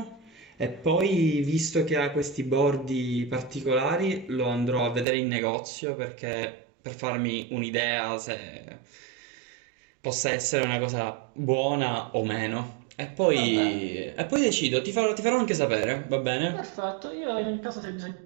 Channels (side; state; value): left; drops out; at 5.1 s